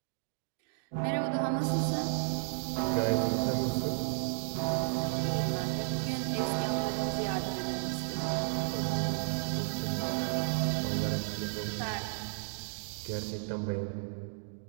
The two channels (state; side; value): silent; left; digital silence